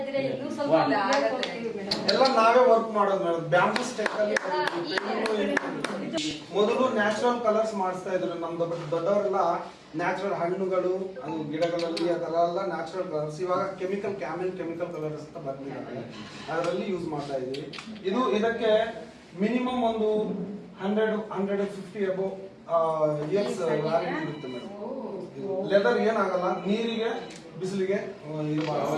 ಇದ್ರೆ ಇನ್ನೂ ಸ್ವಲ್ಪ ಎಲ್ಲ ನಾವೇ ವರ್ಕ್ ಮಾಡೋದು ಮೇಡಮ್. ಬ್ಯಾಂಬೂ ಸ್ಟೆಕ್ ಅಲ್ಲಿ ಮೊದಲು ನ್ಯಾಚುರಲ್ ಕಲರ್ಸ್ ಮಾಡಿಸ್ತಾ ಇದ್ರು ನಮ್ದು. ದೊಡ್ಡವರೆಲ್ಲ ನ್ಯಾಚುರಲ್ ಹಣ್ಣುಗಳು, ಅದು ಗಿಡಗಳಲ್ಲಿ ಆ ತರ ಎಲ್ಲ ನ್ಯಾಚುರಲ್ ಕಲರ್ಸ್. ಇವಾಗ ಕೆಮಿಕಲ್ ಕಲರ್ಸ್ ಅಂತ ಬಂದಿದ್ದಾರೆ, ಅದರಲ್ಲಿ ಯೂಸ್ ಮಾಡ್ತಾ ಇದೀವಿ. ಇದಕ್ಕೆ ಮಿನಿಮಮ್ ಒಂದು 100-150 ಅಬೌವ್ ಇಯರ್ಸ್ ವ್ಯಾರಂಟಿ ಇರುತ್ತೆ ಮೇಡಮ್. ಲೆದರ್ ಏನಾಗಲ್ಲ, ನೀರಿಗೆ ಬಿಸಿಲಿಗೆ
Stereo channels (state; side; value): identical; both; correlation 1.00